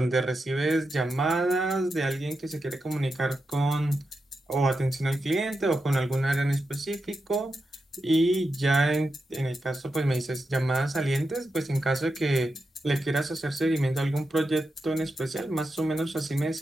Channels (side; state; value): both; normal; correlation 0.88